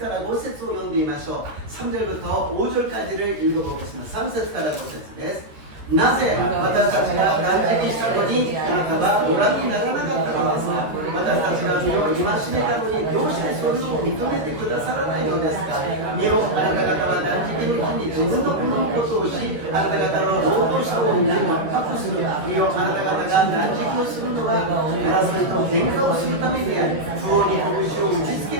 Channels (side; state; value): left; late; 13 ms